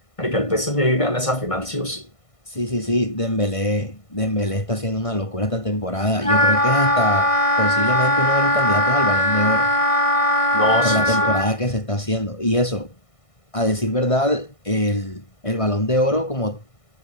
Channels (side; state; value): right; late; 1.6 ms